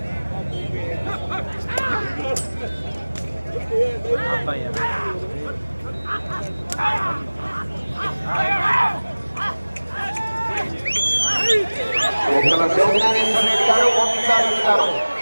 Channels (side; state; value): both; inverted; correlation -1.00